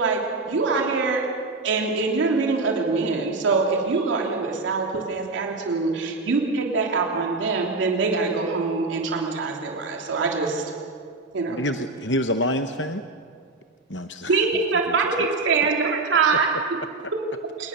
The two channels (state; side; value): quieter; left; 3.4 dB